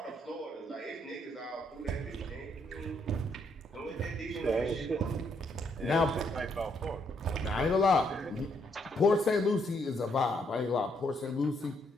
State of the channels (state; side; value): normal; both; correlation 0.73